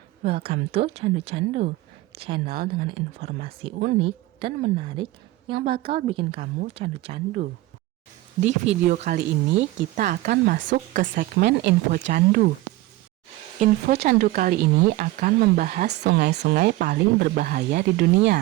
welcome to Candu Candu, channel dengan informasi unik dan menarik yang bakal bikin kamu candu-candu. Di video kali ini kita akan masuk ke segmen info candu. Info candu kali ini akan membahas sungai-sungai paling berbahaya di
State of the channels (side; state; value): left; quieter; 17.8 dB